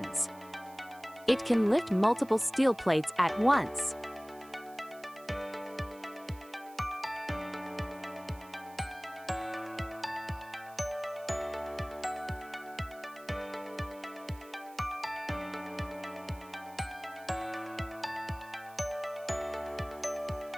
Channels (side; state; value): right; noise; hiss, 23 dB below the sound